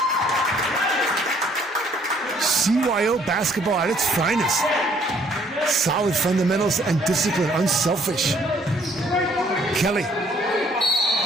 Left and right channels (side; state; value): both; normal; correlation 0.63